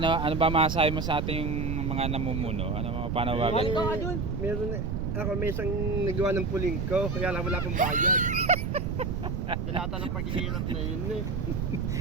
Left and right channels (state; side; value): noise; right; rumble, 1 dB below the sound